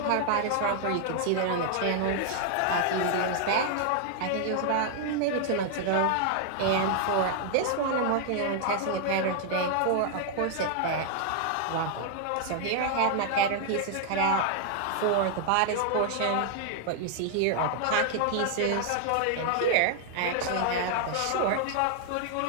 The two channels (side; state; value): both; different; correlation 0.00